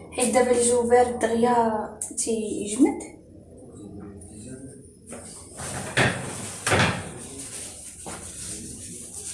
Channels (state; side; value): identical; both; correlation 1.00